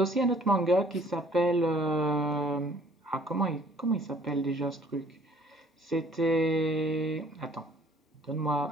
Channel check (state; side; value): normal; both; correlation 0.57